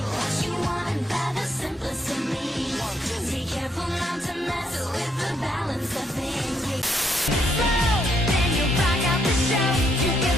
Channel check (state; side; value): normal; both; correlation 0.75